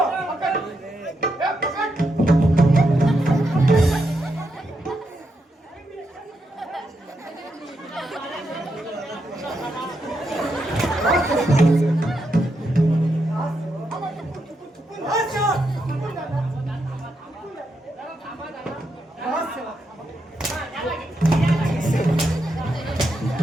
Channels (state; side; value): normal; both; correlation 0.83